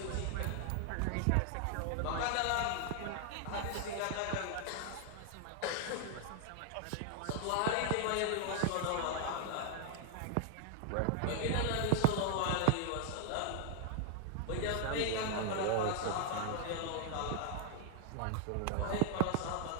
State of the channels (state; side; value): different; both; correlation 0.00